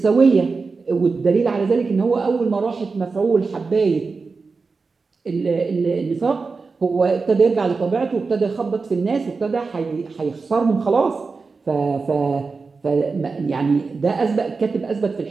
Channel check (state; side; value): quieter; left; 4.4 dB